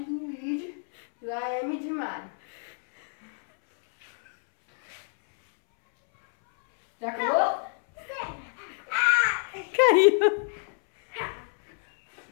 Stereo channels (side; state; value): right; silent; 60 dB below the other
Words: de Luigi, lá é M de Mario. Já acabou? Caiu.